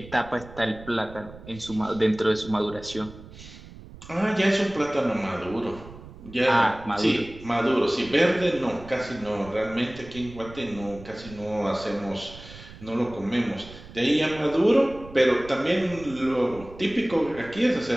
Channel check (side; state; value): right; noise; rumble, 17 dB below the sound